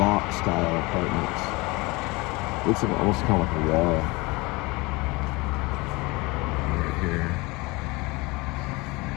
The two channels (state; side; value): quieter; right; 24.3 dB